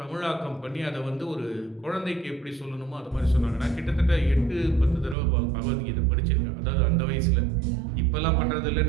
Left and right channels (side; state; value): left; drops out; at 5.2 s